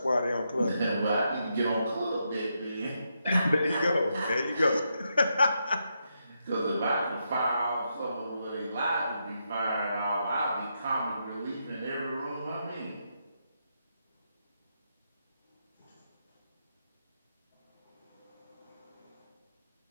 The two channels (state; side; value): inverted; both; correlation -0.82